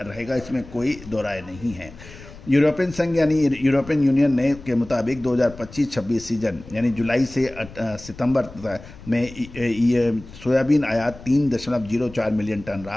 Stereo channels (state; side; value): noise; left; rumble, 18 dB below the sound